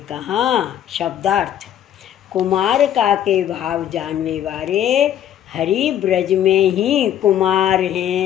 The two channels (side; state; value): right; quieter; 10.7 dB